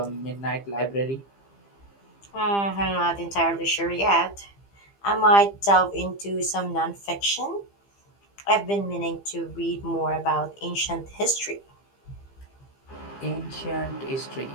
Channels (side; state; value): right; late; 15 ms